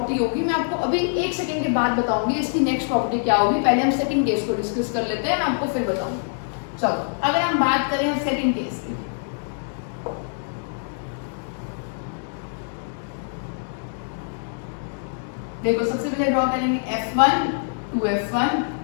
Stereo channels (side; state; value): right; silent; digital silence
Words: होगी, मैं आपको अभी 1 सेकंड के बाद बताऊंगी इसकी नेक्स्ट प्रॉपर्टी क्या होगी। पहले हम सेकंड केस को डिस्कस कर लेते हैं, मैं आपको फिर बताऊंगी। चलो अगर हम बात करें हम सेकंड केस की, देखो सबसे पहले ड्रॉ करेंगे F1 2F1